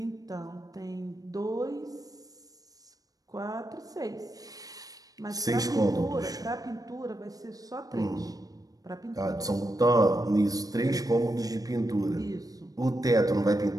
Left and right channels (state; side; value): late; left; 0.18 ms